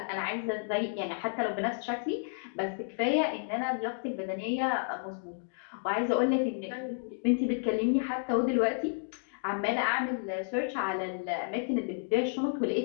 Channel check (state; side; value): silent; right; digital silence